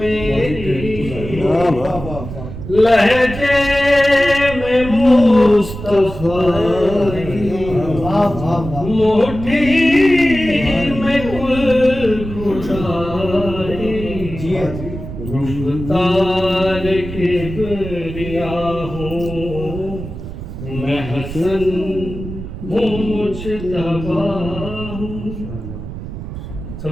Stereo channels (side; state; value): right; noise; rumble, 10 dB below the sound